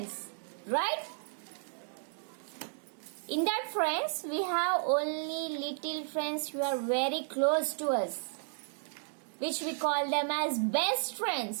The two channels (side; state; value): left; silent; digital silence